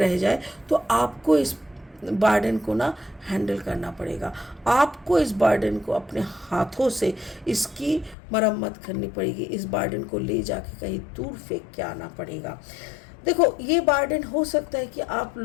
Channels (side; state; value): right; drops out; at 8.2 s